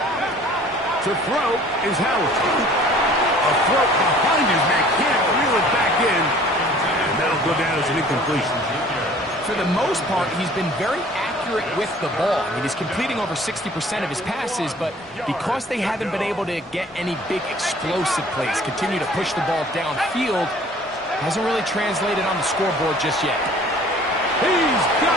To throw is Howard. A throw behind his man, can't reel it back in. And that'll go down as an incompletion. For the most part, he's been very accurate with the ball. I mean, he's completing over 60% of his passes, but because they haven't been able to get any big explosive plays, continue to push the ball downfield, hasn't really translated on the scoreboard just yet. He's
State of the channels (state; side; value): normal; both; correlation 0.51